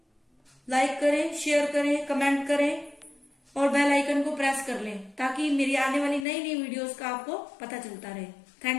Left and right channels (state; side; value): drops out; right; at 6.2 s